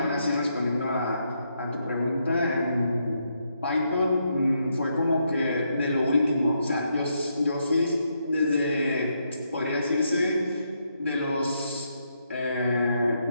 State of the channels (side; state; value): both; inverted; correlation -0.79